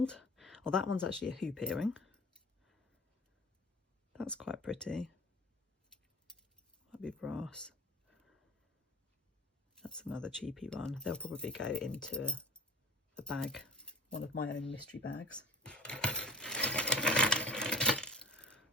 Oh, that one's actually a hoop earring. That's quite pretty. Might be brass. That's another cheapy one. They'll probably go into a bag, one of my own mystery bags.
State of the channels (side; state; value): both; normal; correlation 0.38